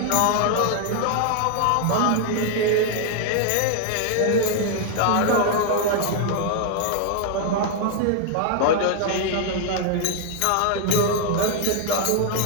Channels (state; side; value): different; both; correlation 0.00